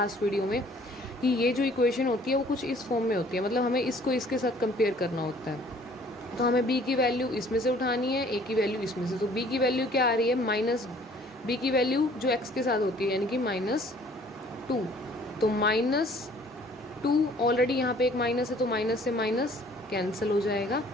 वीडियो में कि ये जो इक्वेशन होती है वो कुछ इस फॉर्म में होती है। मतलब हमें इसको इसके साथ कंपेयर करना होता है। तो हमें b की वैल्यू इसमें से उठानी है, a की वैल्यू इसमें से। तो b की वैल्यू क्या आ रही है, b की वैल्यू जो x के साथ होती है, यानी कि -2। तो -2 ऑलरेडी यहाँ पे एक माइनस है, तो माइनस से माइनस कैंसिल हो जाएगा।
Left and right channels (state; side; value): normal; both; correlation 0.56